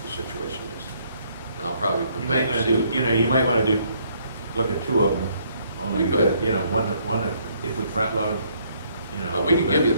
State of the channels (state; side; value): inverted; both; correlation -0.68